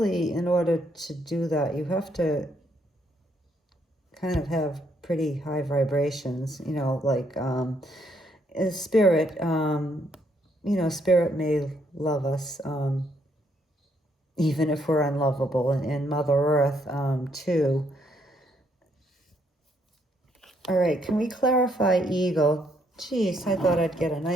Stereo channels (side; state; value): both; normal; correlation 0.72